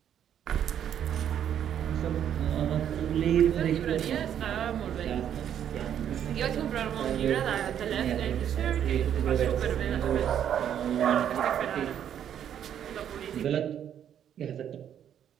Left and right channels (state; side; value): quieter; left; 9.6 dB